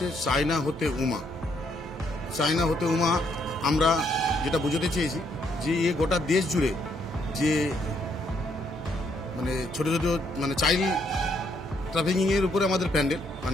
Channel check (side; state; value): both; normal; correlation 0.72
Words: চায়না হতে উমা। চায়না হতে উমা আমরা যেটা বুঝতে চেয়েছি যে গোটা দেশ জুড়ে যে মানে ছোট ছোট মানে চাইল্ড ট্রাফিকিংয়ের উপরে আমাদের প্যান্ডেল,